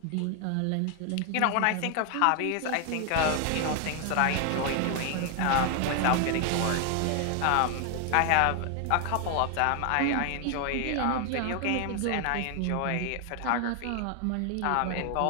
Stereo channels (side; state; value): both; different; correlation 0.00